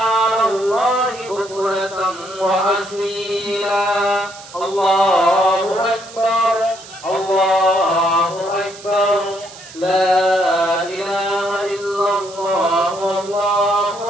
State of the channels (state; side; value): noise; right; hiss, 18 dB below the sound